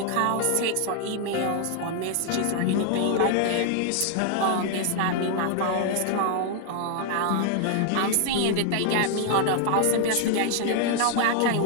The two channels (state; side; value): different; both; correlation 0.00